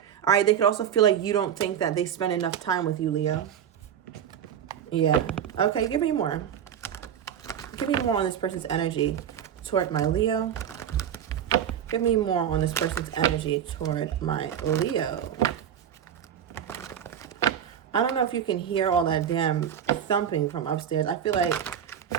All right. They could also feel like you don't think that they spend enough time with you, Leo. Yeah. Okay. Give me more. Give me more on this person's energy toward my Leo. Give me more on this person's energy toward my Leo. I don't know if you can hear all that damn thumping from upstairs. I feel like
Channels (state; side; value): quieter; left; 9.2 dB